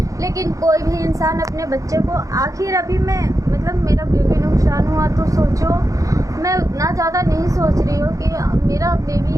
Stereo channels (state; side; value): late; left; 0.16 ms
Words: लेकिन कोई भी इंसान अपने बच्चे को, आखिर अभी मैं मतलब मेरा बेबी नुकसान हुआ तो सोचो, मैं उतना ज़्यादा नहीं सोच रही हूँ कि मेरा